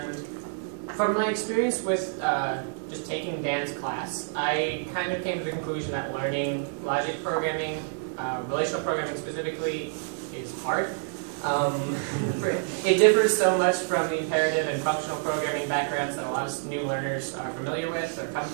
from my experience with just taking Dan's class, I kind of came to the conclusion that learning logic programming, relational programming specifically, is hard. It differs so much from the imperative and functional programming backgrounds that a lot of new learners are familiar with or come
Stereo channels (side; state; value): left; silent; digital silence